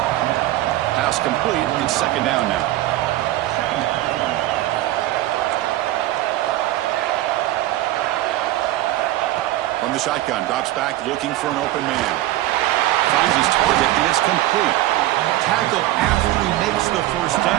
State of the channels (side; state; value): left; quieter; 15.6 dB